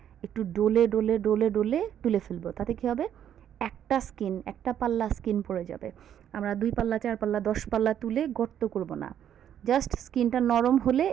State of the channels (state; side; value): quieter; left; 9.9 dB